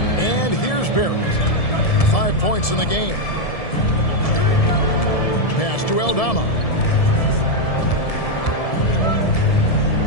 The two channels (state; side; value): late; right; 1.7 ms